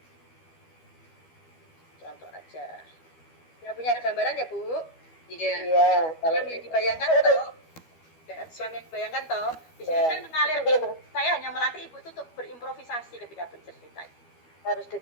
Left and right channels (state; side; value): late; right; 12 ms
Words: aja. Ya punya gambaran ya Bu? Iya. Iya, kalau Yang dibayangkan toh, ya, yang dibayangkan toh, di sini kan mengalir. Saya hanya melatih Ibu itu untuk berimprovisasi ketika bercerita. harus